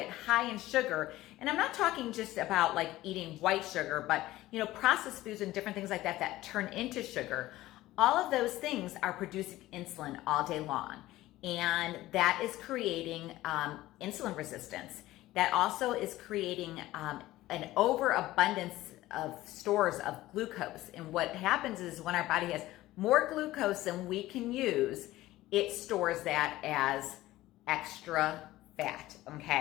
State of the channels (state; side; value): quieter; right; 16.5 dB